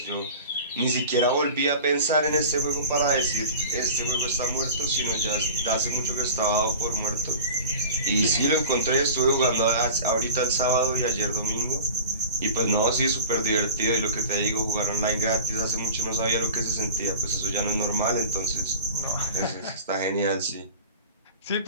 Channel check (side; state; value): both; inverted; correlation -0.37